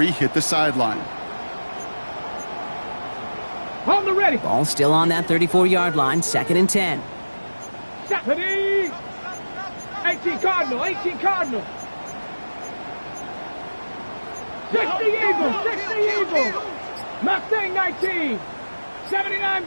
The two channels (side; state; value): both; inverted; correlation -1.00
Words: he hit the sideline. On the ready. Ball still on that 34-yard line, 2nd and 10. 18 Cardinal, 18 Cardinal. 60 Eagles, 60 Eagles. Mustang 19. 79